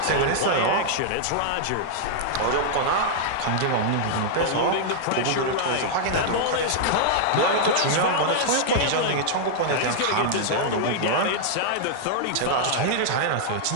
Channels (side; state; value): both; different; correlation -0.01